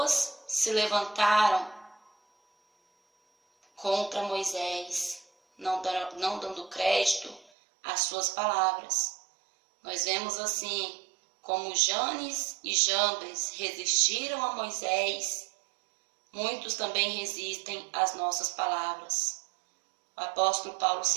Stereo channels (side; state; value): left; drops out; at 7.5 s